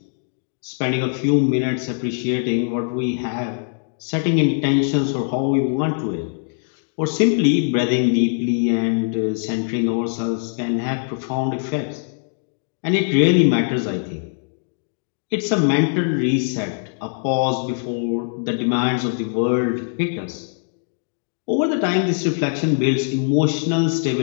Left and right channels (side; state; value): right; silent; digital silence